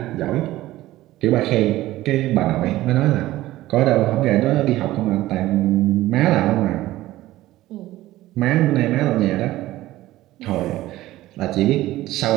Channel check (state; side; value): quieter; left; 16.1 dB